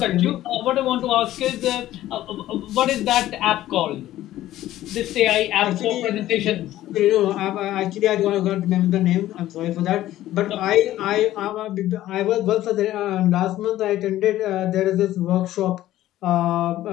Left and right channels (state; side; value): quieter; right; 14.2 dB